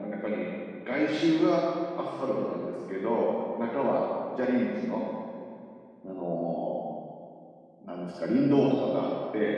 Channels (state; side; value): identical; both; correlation 1.00